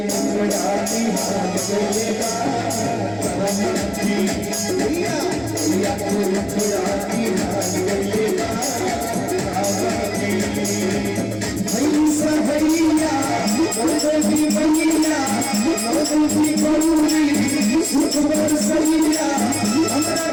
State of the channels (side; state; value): right; noise; hum, 21 dB below the sound